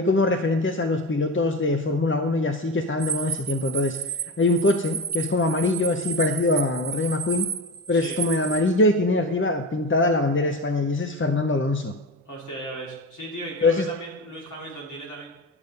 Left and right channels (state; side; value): normal; both; correlation 0.24